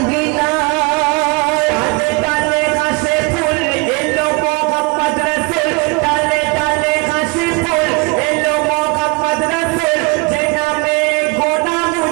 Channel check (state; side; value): quieter; left; 26.7 dB